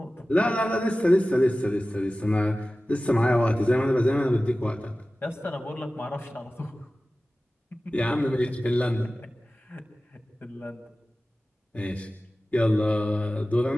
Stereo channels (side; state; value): both; normal; correlation 0.96